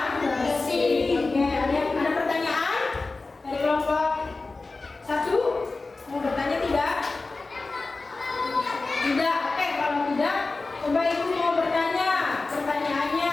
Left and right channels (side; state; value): right; quieter; 3.6 dB